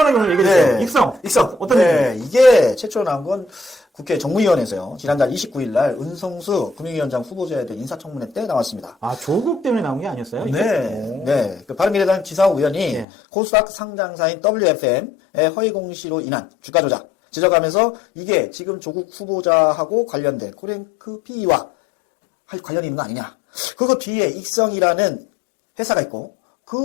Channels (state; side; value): drops out; right; at 13.1 s